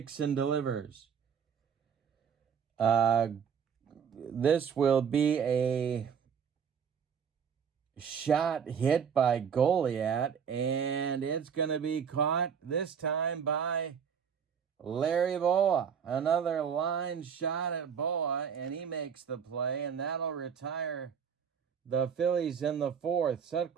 and delivers. This will be a shot hit by Goliat, and it's going to be caught this time by Larry Boa. Another line shot at Boa, and he makes the play, and that'll retire the Phillies in the 4th.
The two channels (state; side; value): quieter; left; 7.2 dB